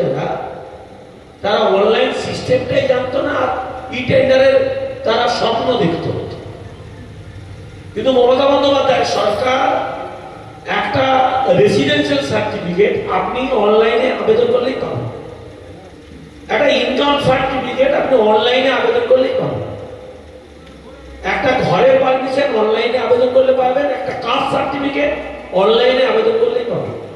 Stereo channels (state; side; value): identical; both; correlation 1.00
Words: যারা, তারা অনলাইন সিস্টেমটাই জানতো না, আর ইটেন্ডারের তারা স্বপ্ন দেখত। কিন্তু মমতা বন্দ্যোপাধ্যায় সরকার একটা রেসিডেন্সিয়াল সার্টিফিকেট আপনি অনলাইনে আবেদন করলেই পাবেন, একটা ইনকাম সার্টিফিকেট আপনি অনলাইনে আবেদন করলেই পাবেন, একটা ঘরের পারমিশন অনলাইনে আবেদন করলে পাবেন, একটা কাস্ট সার্টিফিকেট অনলাইনে আবেদন করলেই পাবেন।